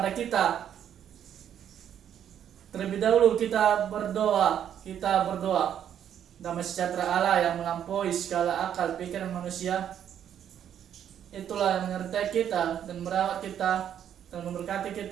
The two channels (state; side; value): quieter; left; 9.6 dB